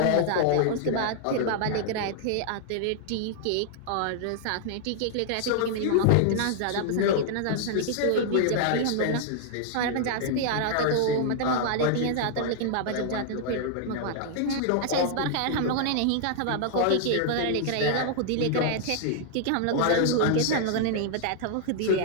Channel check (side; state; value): both; different; correlation -0.01